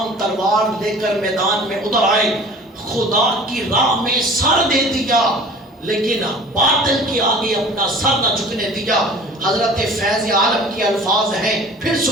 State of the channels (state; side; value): normal; both; correlation 0.44